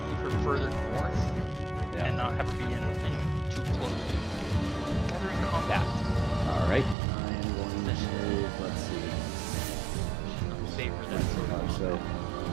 to move her further north. not have it be anything too close. Gathering combat. Alright, I am going to move, let's see. Favor that sort of So,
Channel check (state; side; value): drops out; left; at 7.0 s